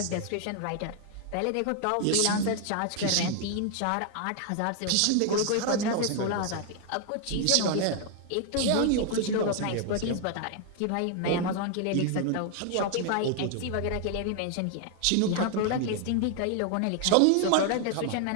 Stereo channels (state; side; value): different; both; correlation 0.00